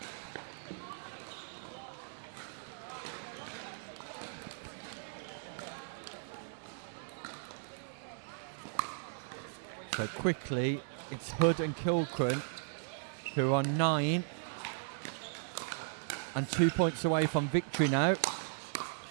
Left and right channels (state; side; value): silent; left; 53 dB below the other